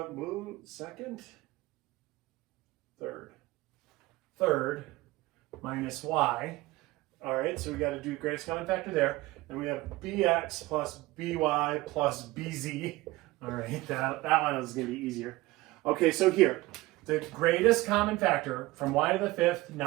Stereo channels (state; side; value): quieter; left; 19.5 dB